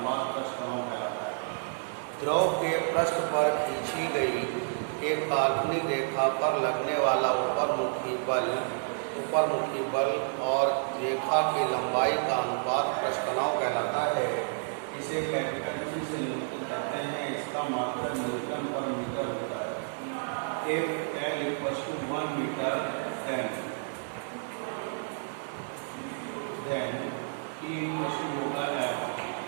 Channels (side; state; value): left; silent; digital silence